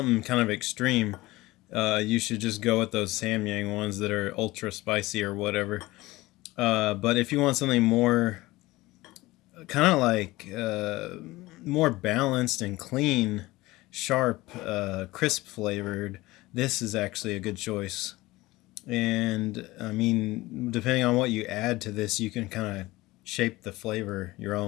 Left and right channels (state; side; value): quieter; right; 19.4 dB